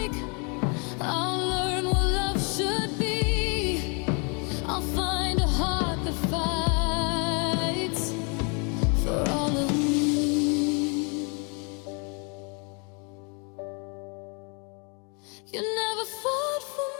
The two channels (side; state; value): right; quieter; 35.0 dB